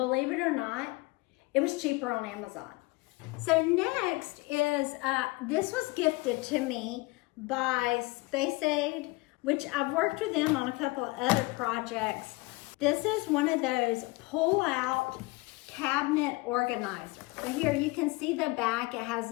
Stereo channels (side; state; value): right; quieter; 24.1 dB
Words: it or not, it was cheaper on Amazon. So next is, this was gifted to me by Space Aid, which I've worked with them on a couple of other projects. This is one of those pull-out cabinet organizers. So here you can see the back. It has